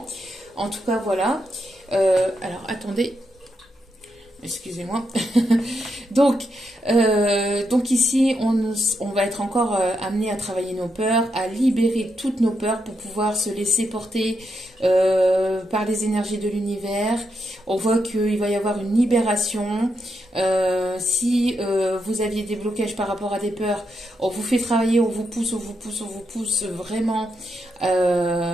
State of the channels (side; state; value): both; normal; correlation 0.83